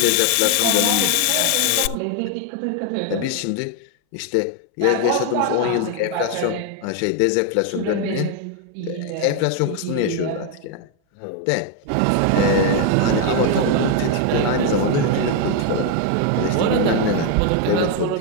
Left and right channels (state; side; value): different; both; correlation 0.01